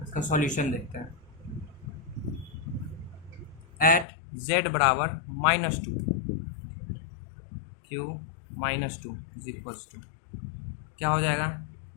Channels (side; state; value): right; drops out; at 4.0 s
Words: इसका सॉल्यूशन देखते हैं। एट z बराबर -2 q -2 इज इक्वल्स टू क्या हो जाएगा,